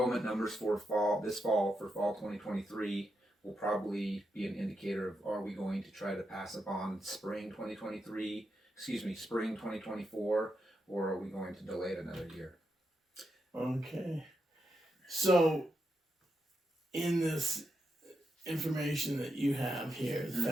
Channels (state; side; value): normal; both; correlation 0.85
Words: numbers for fall 2023 will probably be an indicator of, are we going to try to pass a bond spring 2024, or are we going to delay it another year? Okay. So in this information that you have here,